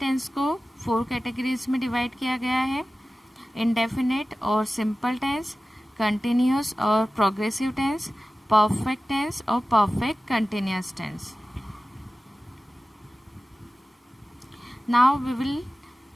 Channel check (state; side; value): normal; both; correlation 0.96